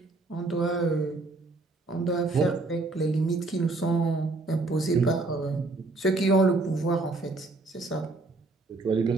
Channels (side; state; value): left; quieter; 3.3 dB